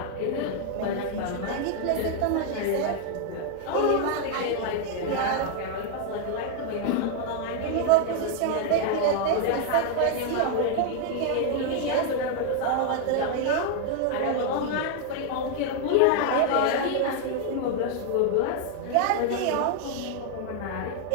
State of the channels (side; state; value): both; different; correlation 0.00